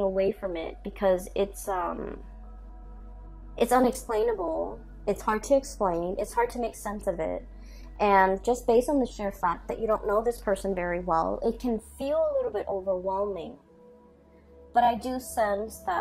from it because it's unexplainable. It's hard to explain. It's hard to make sense of it. And just based on the sheer fact that you don't know this person very well, it can feel a little bit overwhelming. But I do sense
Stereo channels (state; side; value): identical; both; correlation 1.00